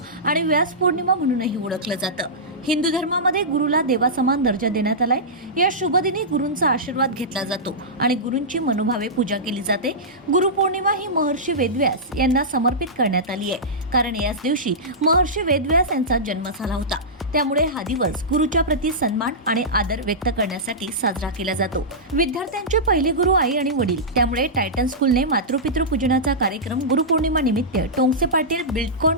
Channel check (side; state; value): both; normal; correlation -0.15